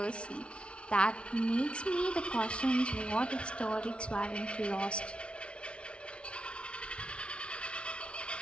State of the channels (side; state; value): right; late; 0.059 ms